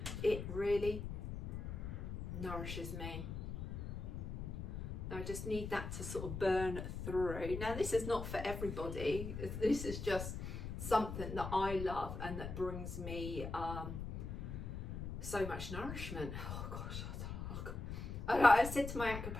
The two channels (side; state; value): left; noise; rumble, 6 dB below the sound